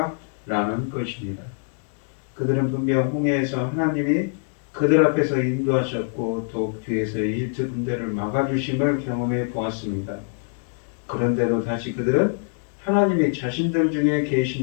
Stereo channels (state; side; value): silent; right; 60 dB below the other